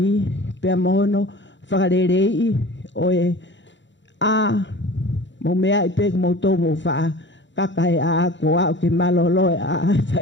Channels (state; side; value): late; right; 0.53 ms